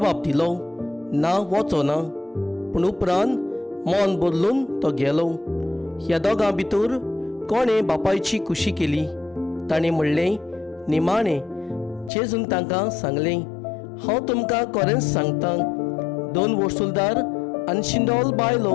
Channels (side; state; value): right; drops out; at 12.1 s